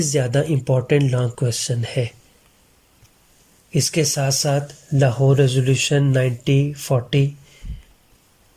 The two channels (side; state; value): both; identical; correlation 1.00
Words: زیادہ امپورٹنٹ لانگ کویشچن ہے۔ اس کے ساتھ ساتھ لاہور ریزولوشن 1940،